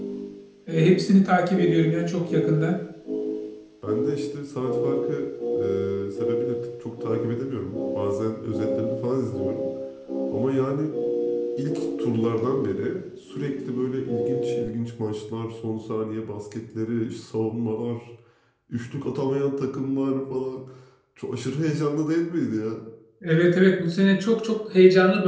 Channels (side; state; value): both; identical; correlation 1.00